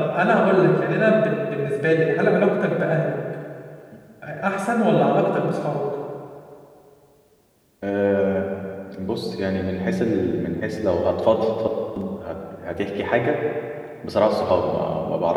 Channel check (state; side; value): identical; both; correlation 1.00